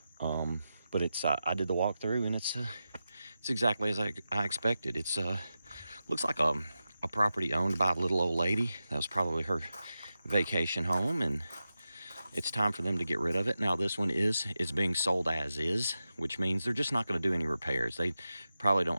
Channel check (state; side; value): inverted; both; correlation -0.91